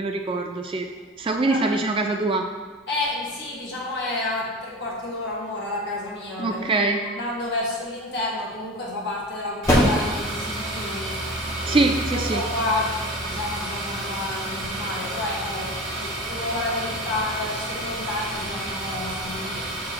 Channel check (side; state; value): both; normal; correlation 0.33